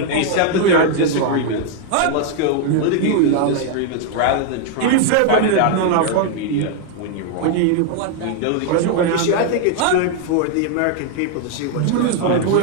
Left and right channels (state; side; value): different; both; correlation 0.00